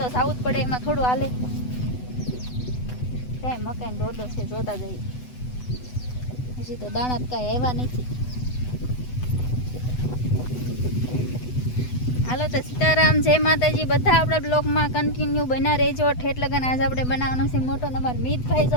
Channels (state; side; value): late; right; 8.0 ms